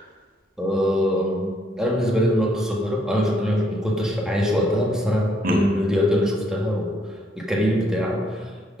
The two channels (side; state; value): both; normal; correlation 0.70